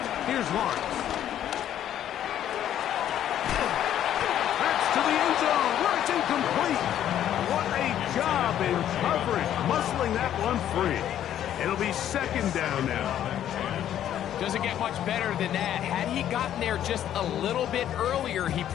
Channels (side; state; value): right; quieter; 11.0 dB